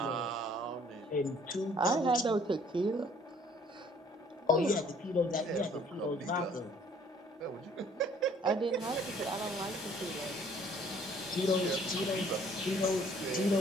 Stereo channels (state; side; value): normal; both; correlation 0.58